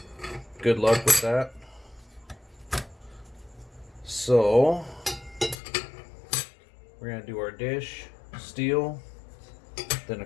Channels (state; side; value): drops out; right; at 5.6 s